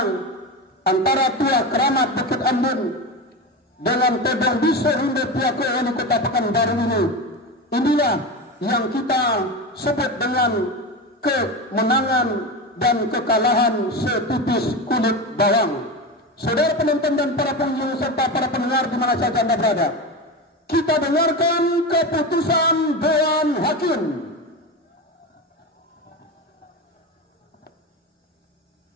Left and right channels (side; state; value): both; normal; correlation 0.22